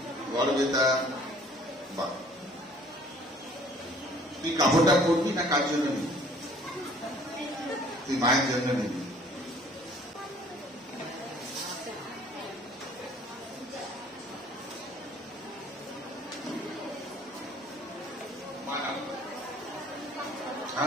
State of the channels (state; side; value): normal; both; correlation 0.55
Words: গড়বেতা। বা তুই কাপড়টা পরবি না কার জন্য নিবি? তুই মায়ের জন্য নিবি।